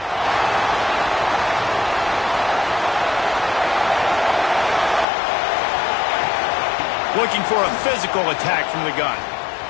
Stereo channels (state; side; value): drops out; right; at 5.1 s